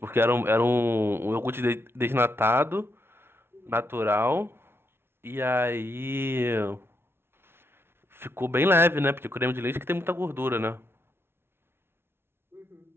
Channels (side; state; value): left; late; 0.12 ms